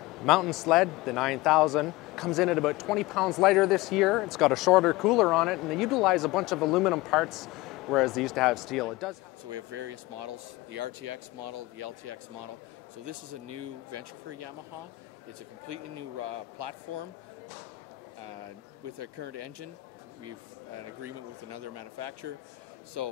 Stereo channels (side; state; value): right; quieter; 20.0 dB